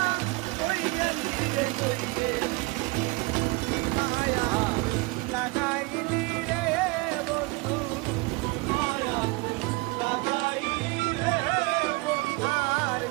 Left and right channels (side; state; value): left; quieter; 25.7 dB